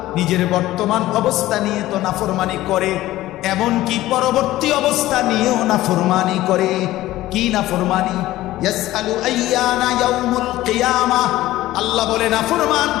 নিজের বর্তমান অবস্থা নিয়ে তো নাফরমানি করে, এমনকি পরবর্তী অবস্থা নিয়েও নাফরমানি করে। কি নাফরমানি? ইয়াসআলু আইয়ানা ইয়াউমুল কিয়ামাহ। আল্লাহ বলে নাফরমান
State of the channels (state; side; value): quieter; right; 15.9 dB